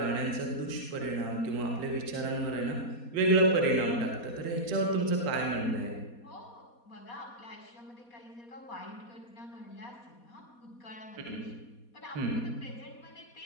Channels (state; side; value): late; right; 4.2 ms